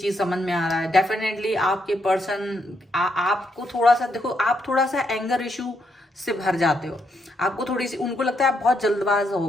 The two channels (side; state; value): both; normal; correlation 0.78